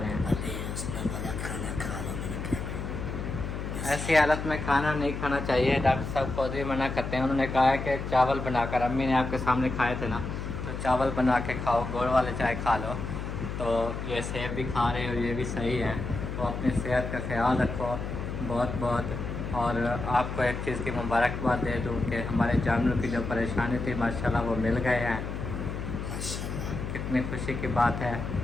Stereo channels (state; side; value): noise; left; hum, 5 dB below the sound